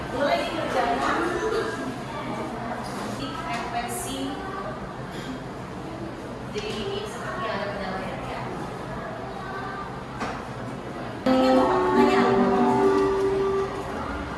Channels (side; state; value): both; identical; correlation 1.00